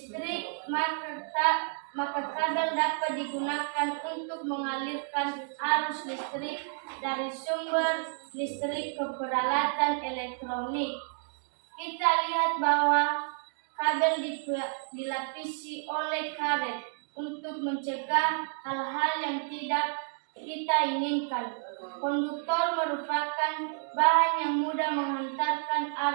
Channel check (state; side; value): silent; left; 56 dB below the other